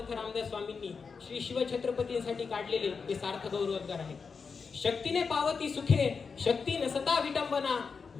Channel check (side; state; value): right; quieter; 5.3 dB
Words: रामदास स्वामींनी श्री शिवछत्रपतींसाठी काढलेले हे सार्थ गौरवोद्गार आहे. शक्तीने पावती सुखे, शक्ती नसता विटंबना,